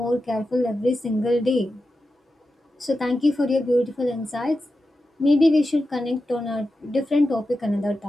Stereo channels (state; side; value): normal; both; correlation 0.91